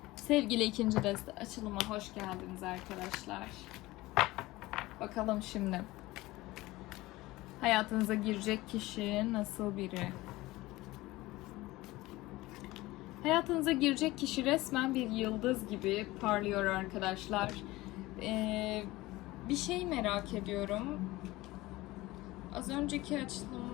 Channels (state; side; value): quieter; right; 19.1 dB